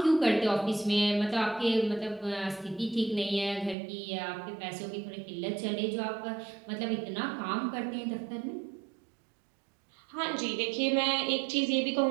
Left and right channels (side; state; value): left; drops out; at 3.8 s